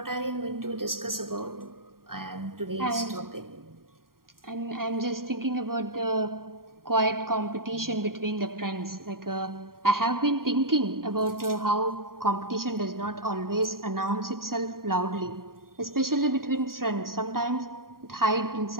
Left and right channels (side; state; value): left; late; 0.92 ms